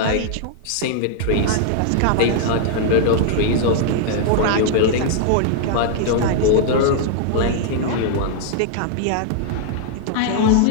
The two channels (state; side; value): different; both; correlation -0.01